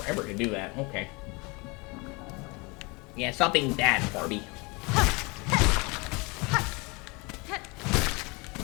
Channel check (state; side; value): quieter; right; 27.7 dB